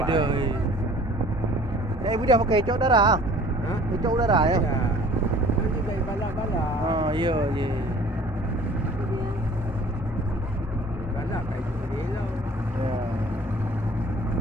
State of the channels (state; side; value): normal; both; correlation 0.50